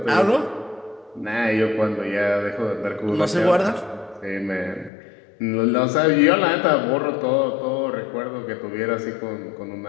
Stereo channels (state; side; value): drops out; right; at 4.9 s